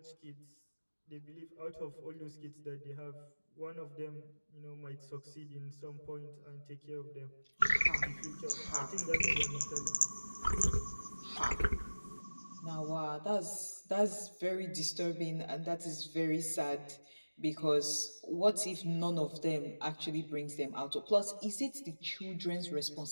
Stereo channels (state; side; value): inverted; both; correlation -1.00